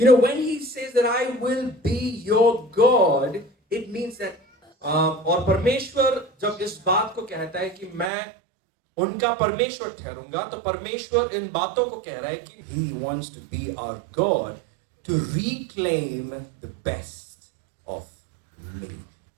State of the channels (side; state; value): left; drops out; at 8.1 s